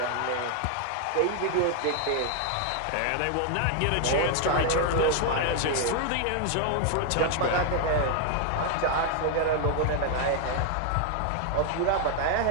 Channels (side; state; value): both; different; correlation 0.00